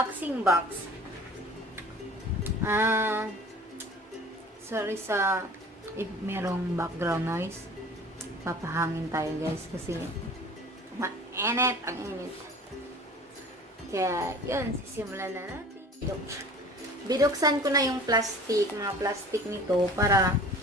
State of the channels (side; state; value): both; normal; correlation 0.44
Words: box. Sorry sa if merong background noise. Papahangin tayo guys kasi mainit ang init. Kaya yun, sisimulan na natin. Binuksan ko na yung mga plastic nito para